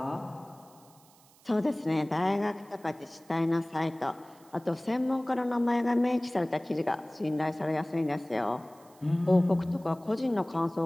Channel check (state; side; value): noise; right; hiss, 28 dB below the sound